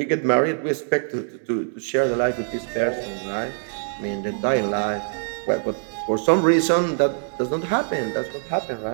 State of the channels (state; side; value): silent; left; digital silence